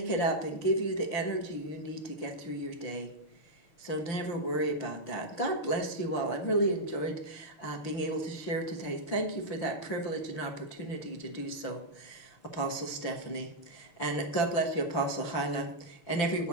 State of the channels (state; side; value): late; right; 5.9 ms